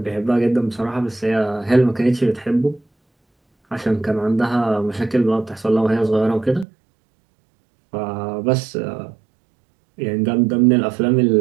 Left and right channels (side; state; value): left; drops out; at 6.7 s